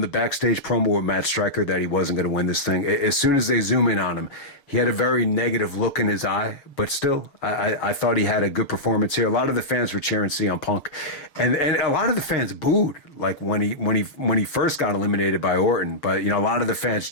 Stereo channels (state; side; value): late; right; 6.7 ms